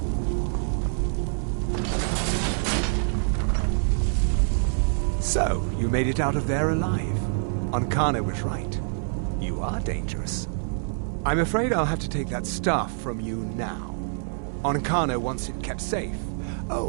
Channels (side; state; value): left; silent; digital silence